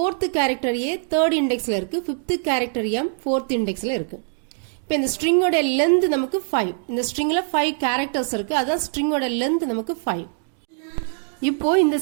கேரக்டர் a தேர்ட் இண்டெக்ஸ்ல இருக்கு, ஃபிஃப்த் கேரக்டர் m ஃபோர்த் இண்டெக்ஸ்ல இருக்கு. இப்போ இந்த ஸ்ட்ரிங்கோட லென்த் நமக்கு 5. இந்த ஸ்ட்ரிங்ல 5 கேரக்டர்ஸ் இருக்கு, அதான் ஸ்ட்ரிங்கோட லென்த் நமக்கு 5. இப்போ இந்த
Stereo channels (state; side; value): silent; left; 64 dB below the other